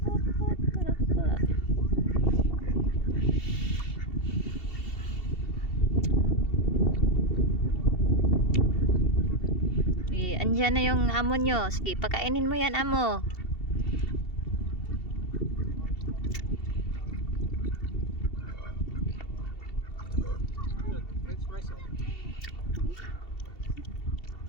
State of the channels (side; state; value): right; late; 2.7 ms